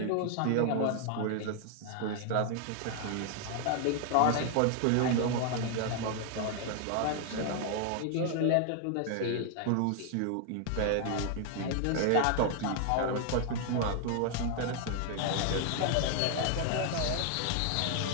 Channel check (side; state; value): both; different; correlation 0.00